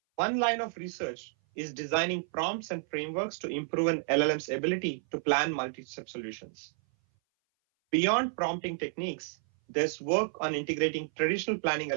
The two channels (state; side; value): silent; left; 57 dB below the other